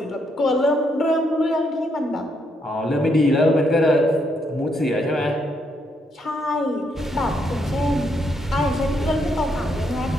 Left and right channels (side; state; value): both; normal; correlation 0.76